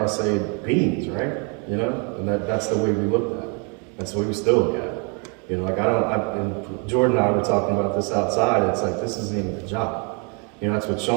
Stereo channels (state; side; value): quieter; left; 35.8 dB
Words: say beings, right? You know, and that's the way we look at it. That's the way we still look at it. You know, like and Jordan and I were talking about this outside. It's like, this isn't even a job. You know, that's what